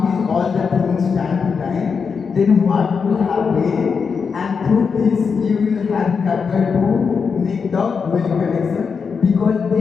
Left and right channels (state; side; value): quieter; right; 5.7 dB